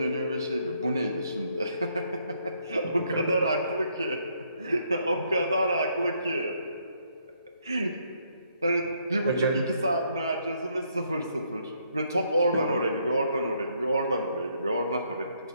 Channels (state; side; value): inverted; both; correlation -0.71